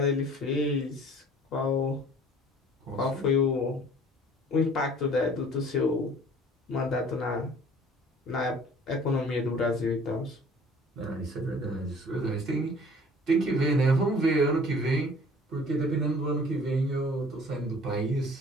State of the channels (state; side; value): normal; both; correlation 0.50